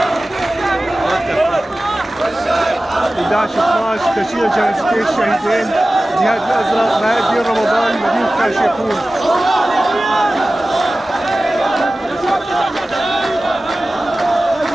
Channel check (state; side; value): normal; both; correlation 0.96